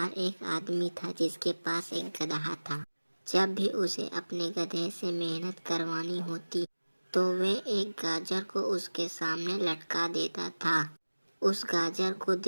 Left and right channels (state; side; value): inverted; both; correlation -1.00